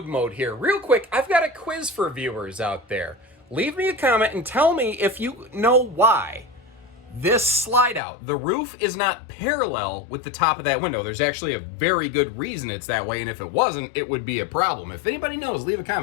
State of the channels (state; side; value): drops out; right; at 8.0 s